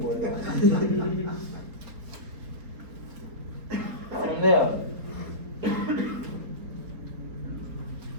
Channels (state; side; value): late; left; 4.3 ms